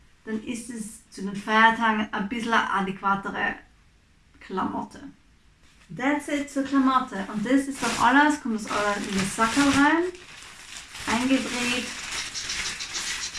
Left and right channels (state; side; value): identical; both; correlation 1.00